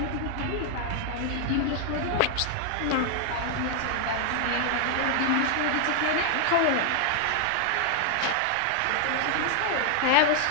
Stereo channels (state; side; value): different; both; correlation 0.00